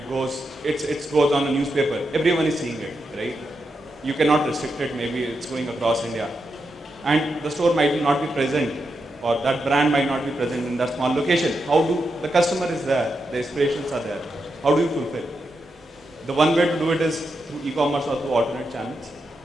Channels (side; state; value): both; normal; correlation 0.85